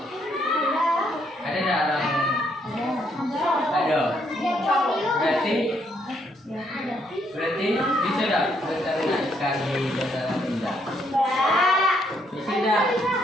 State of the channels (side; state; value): both; normal; correlation 0.72